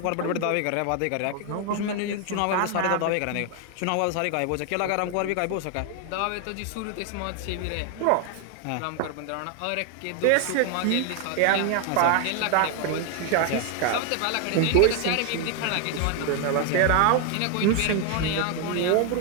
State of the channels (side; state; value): both; different; correlation 0.01